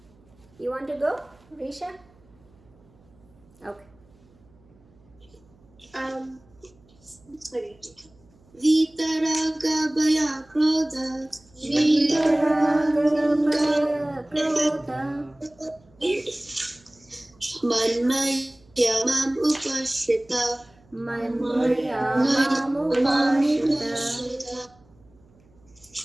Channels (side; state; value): right; noise; hum, 30 dB below the sound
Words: You want to go, Risha? Okay. Vitaraga Bhaya Krodha Manmaya Mam Upashita Bahavo